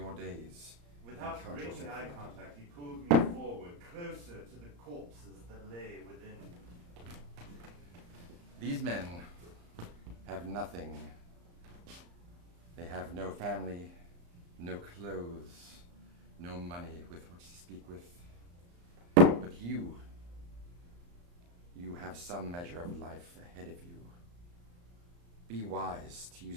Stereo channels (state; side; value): late; left; 34 ms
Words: days. Without breaking eye contact, he pulled me forward, closer to the corpses that lay within. These men have nothing. They have no family, no clothes, no money with which to speak with. But you have some measure of life ahead of you. Be wise to